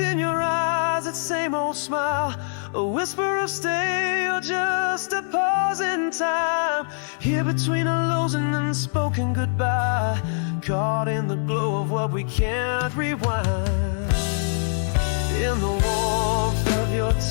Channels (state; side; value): silent; right; digital silence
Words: your eyes, that same old smile, a whisper of stay or just a pause in time. Here between a lows and unspoken goodbye, caught in the glow of what we can't rewind. In the warmth of your